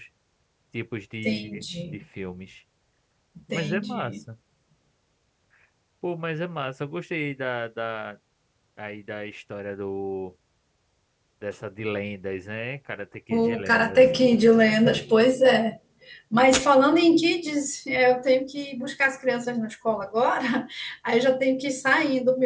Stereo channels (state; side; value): identical; both; correlation 1.00